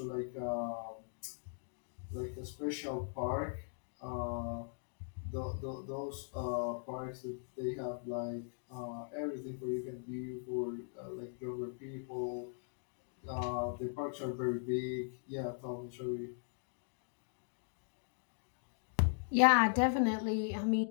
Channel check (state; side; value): silent; right; digital silence